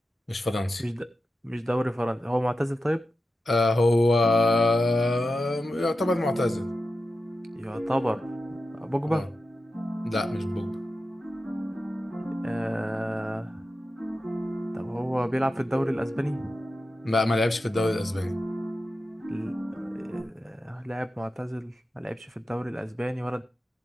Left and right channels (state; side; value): normal; both; correlation 0.91